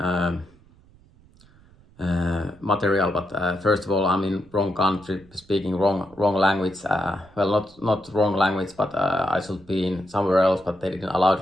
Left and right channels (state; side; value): noise; right; rumble, 27 dB below the sound